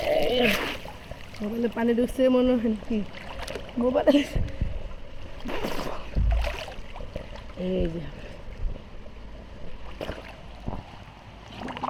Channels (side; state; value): both; identical; correlation 1.00